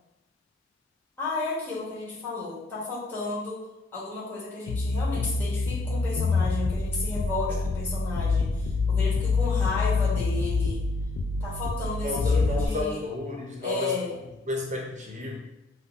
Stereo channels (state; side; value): quieter; right; 3.3 dB